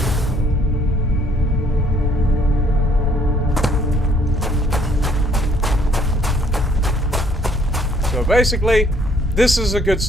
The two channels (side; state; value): both; normal; correlation 0.63